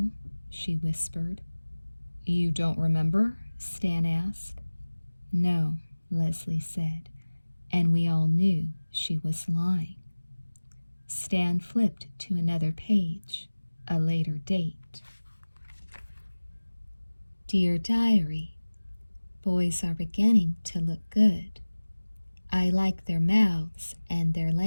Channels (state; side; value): inverted; both; correlation -1.00